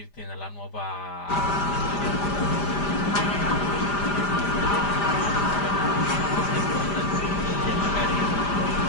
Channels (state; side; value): late; right; 5.0 ms